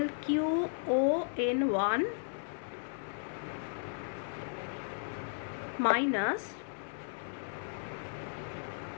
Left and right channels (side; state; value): right; silent; 54 dB below the other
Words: Q o n one minus